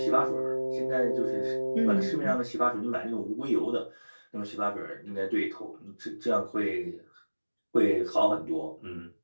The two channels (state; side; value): inverted; both; correlation -1.00